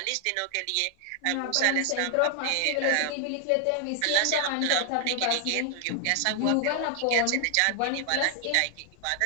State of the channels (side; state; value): both; different; correlation 0.00